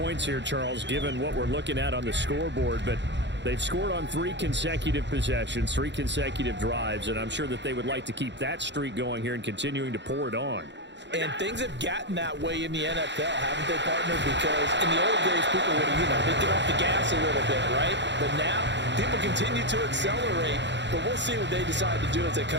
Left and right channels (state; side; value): late; left; 0.52 ms